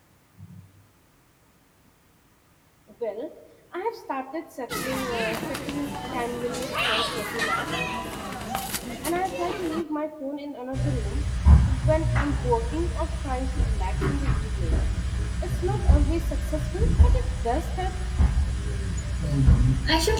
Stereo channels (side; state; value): both; identical; correlation 1.00